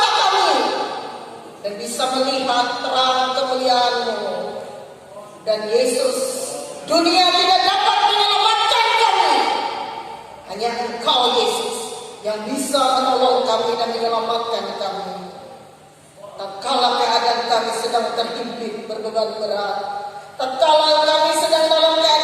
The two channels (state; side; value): identical; both; correlation 1.00